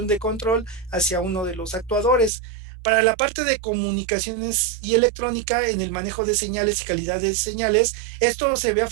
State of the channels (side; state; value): left; drops out; at 2.3 s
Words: de control hacia uno de los actuadores. Para la parte de comunicaciones y electrónica, en el manejo de señales y calidad de señales, esto se ve